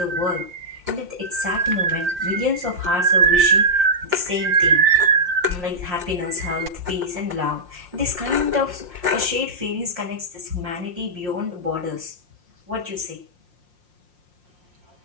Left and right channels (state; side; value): late; left; 5.6 ms